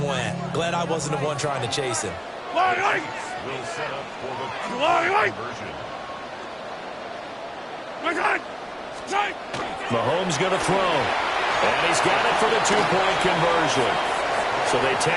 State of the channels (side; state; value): both; identical; correlation 1.00